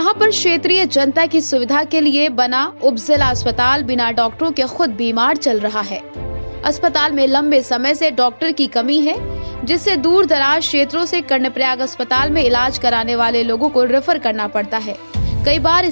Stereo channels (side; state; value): both; inverted; correlation -1.00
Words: पर क्षेत्रीय जनता की सुविधा के लिए बना उपजिला अस्पताल बिना डॉक्टरों के खुद बीमार चल रहा है। अस्पताल में लंबे समय से डॉक्टर की कमी है, जिससे दूर दराज क्षेत्रों से कर्णप्रयाग अस्पताल में इलाज कराने वाले लोगों को रेफर करना पड़ता है। कई बार